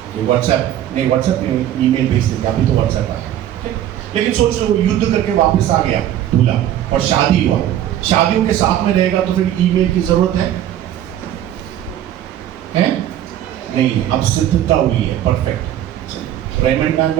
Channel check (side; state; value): left; quieter; 11.7 dB